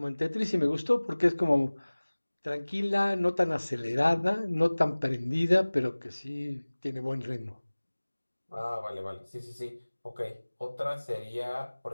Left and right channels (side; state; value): both; inverted; correlation -1.00